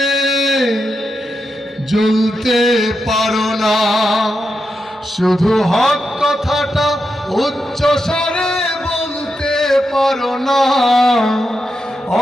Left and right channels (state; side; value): normal; both; correlation 0.86